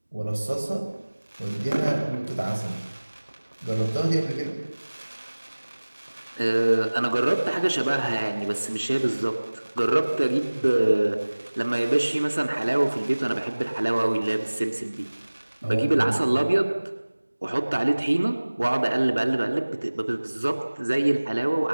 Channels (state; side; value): inverted; both; correlation -1.00